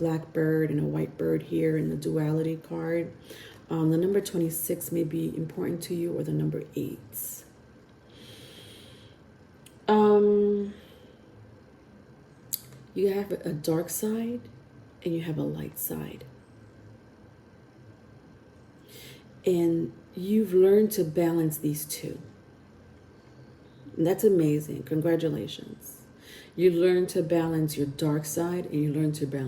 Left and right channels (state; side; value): identical; both; correlation 1.00